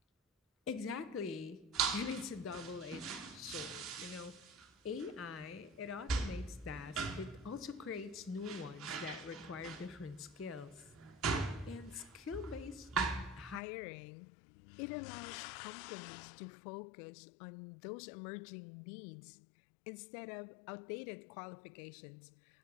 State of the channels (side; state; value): right; drops out; at 13.6 s